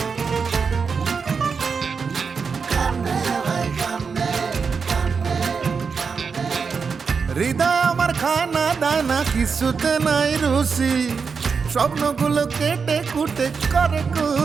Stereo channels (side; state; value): left; quieter; 5.5 dB